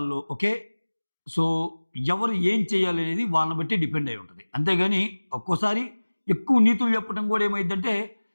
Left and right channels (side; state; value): both; inverted; correlation -1.00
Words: ఓకే. సో ఎవరు ఏం చేయాలి అనేది వాళ్ళని బట్టి డిపెండ్ అయి ఉంటది. అంతేగాని ఒక్కోసారి ఎక్కువ నీతులు చెప్పడం కూడా ఏమైద్దంటే